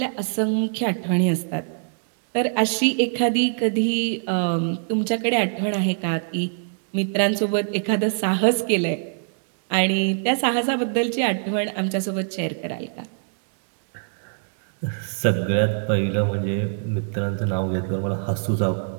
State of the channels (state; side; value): silent; left; digital silence